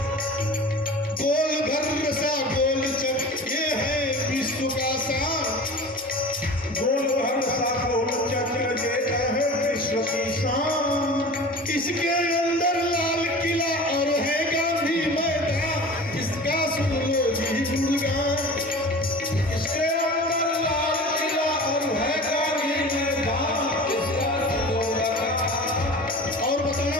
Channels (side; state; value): both; normal; correlation 0.37